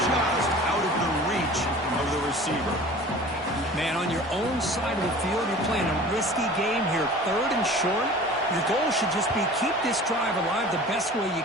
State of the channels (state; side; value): normal; both; correlation 0.42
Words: just out of the reach of the receiver. Man, on your own side of the field, you're playing a risky game here. 3rd and short. Your goal should just be keep this drive alive the best way you